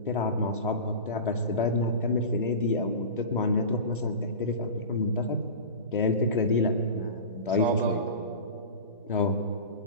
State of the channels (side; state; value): both; inverted; correlation -0.30